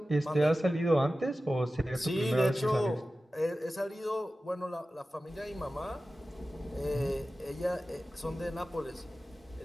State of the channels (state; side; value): normal; both; correlation 0.95